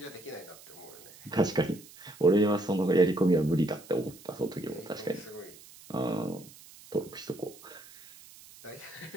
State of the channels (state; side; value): noise; right; hiss, 21 dB below the sound